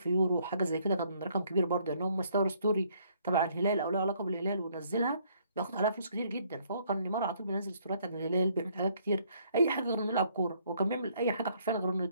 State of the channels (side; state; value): both; inverted; correlation -0.66